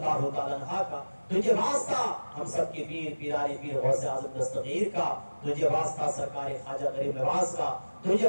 تعالیٰ عنہا کا، تجھے واسطہ ہم سب کے پیر پیرانی پیر غوث اعظم دستگیر کا، تجھے واسطہ سرکار خواجہ غریب نواز کا، تجھے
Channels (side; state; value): both; inverted; correlation -1.00